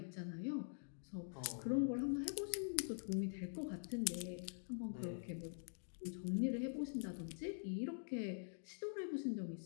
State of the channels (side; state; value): right; silent; digital silence